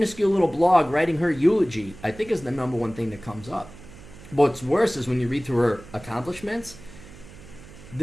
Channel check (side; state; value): right; noise; hum, 19 dB below the sound